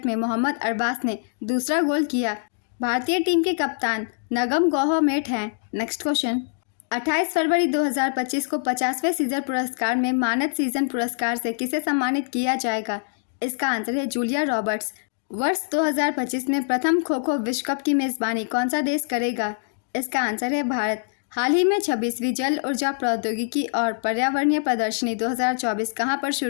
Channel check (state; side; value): silent; right; digital silence